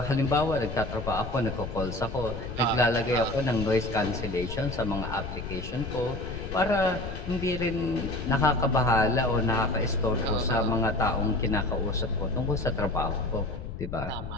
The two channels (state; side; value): noise; left; rumble, 8 dB below the sound